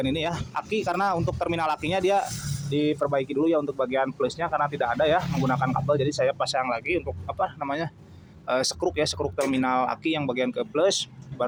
ini ya, aki, karena untuk terminal akinya dia diperbaiki dulu ya untuk bagian plusnya karena tidak ada ya menggunakan kabel. Jadi saya pasang lagi untuk apa namanya sekruk ya, sekruk terminal aki yang bagian ke plus,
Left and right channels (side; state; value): both; identical; correlation 1.00